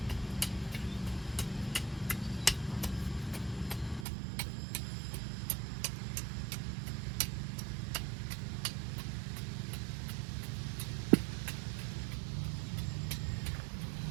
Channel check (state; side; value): drops out; left; at 4.0 s